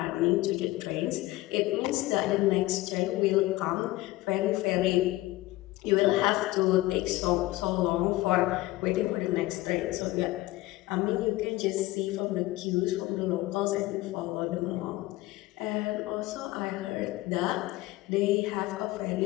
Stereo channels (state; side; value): quieter; right; 18.3 dB